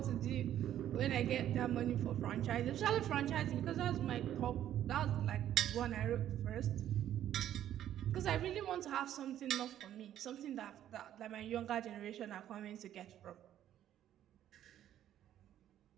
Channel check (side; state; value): left; quieter; 11.4 dB